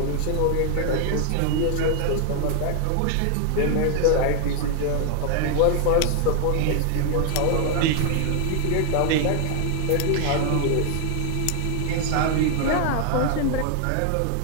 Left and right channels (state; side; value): different; both; correlation 0.00